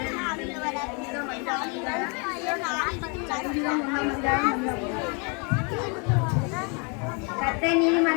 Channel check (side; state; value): right; quieter; 34.5 dB